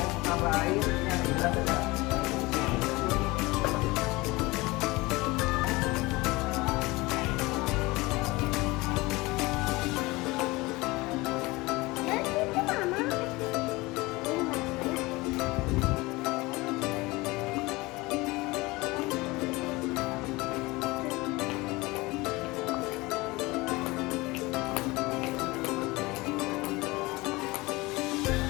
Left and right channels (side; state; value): right; quieter; 22.3 dB